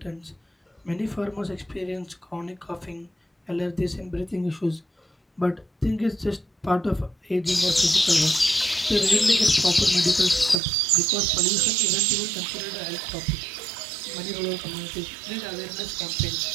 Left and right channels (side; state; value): left; drops out; at 10.6 s